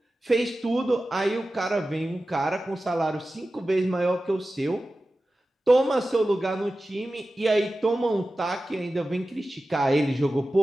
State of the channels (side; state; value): both; normal; correlation 0.95